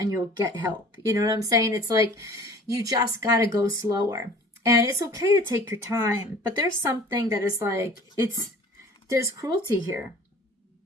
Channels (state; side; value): normal; both; correlation 0.46